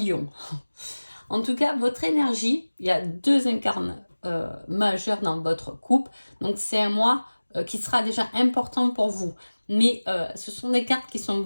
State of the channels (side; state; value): both; inverted; correlation -1.00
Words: En tout cas, votre énergie, il y a deux incarnes majeurs dans votre couple. Donc c'est un mois qui sera déjà important pour vous. Mais ce sont des cartes qui sont